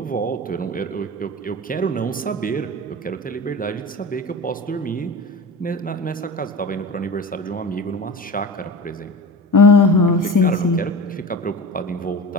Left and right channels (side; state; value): both; normal; correlation 0.31